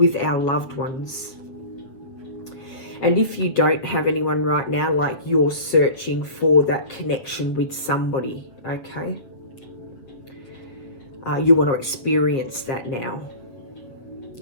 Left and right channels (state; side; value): late; right; 8.3 ms